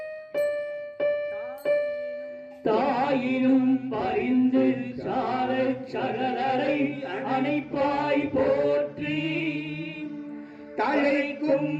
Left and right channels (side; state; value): both; identical; correlation 1.00